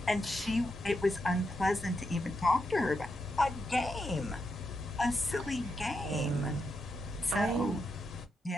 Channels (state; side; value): normal; both; correlation 0.84